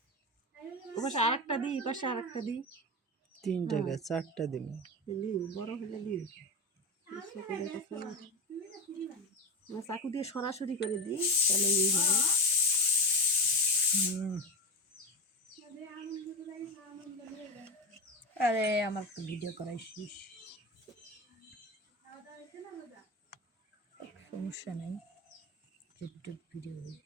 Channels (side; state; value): both; normal; correlation 0.23